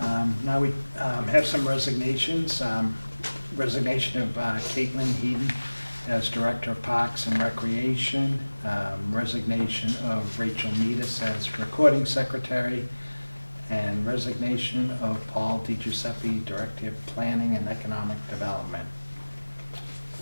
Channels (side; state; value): both; inverted; correlation -1.00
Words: Now we have some resignations. Resignation of Caitlin Heaton as Director of Parks and Recreation. Resignation of Rachel Meadus as Recording Secretary. And resignation of Paul DiGiuseppe, Director of Planning and Economic Development.